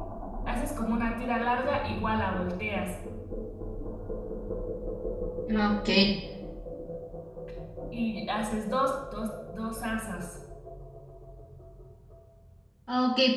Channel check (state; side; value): identical; both; correlation 1.00